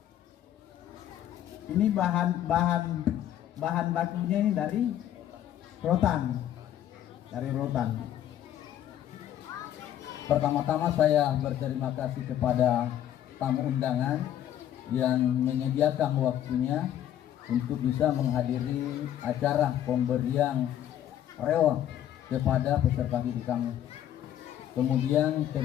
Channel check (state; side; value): quieter; right; 11.2 dB